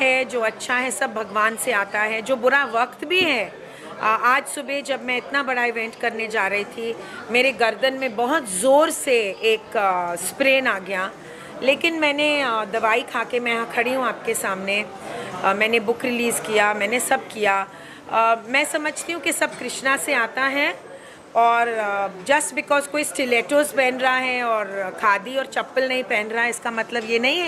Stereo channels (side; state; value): both; identical; correlation 1.00